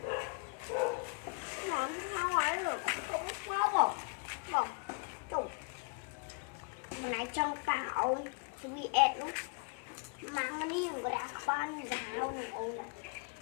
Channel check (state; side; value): quieter; right; 33.9 dB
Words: làm sao ấy rồi cũng sao mà tụng một này trong tạo sweet nó mang cái này một cái ban giáo này ông nó